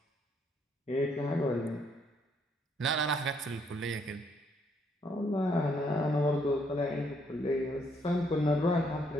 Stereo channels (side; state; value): both; normal; correlation 0.70